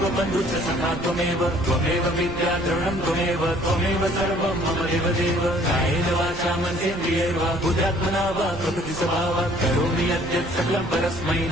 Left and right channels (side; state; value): right; noise; rumble, 13 dB below the sound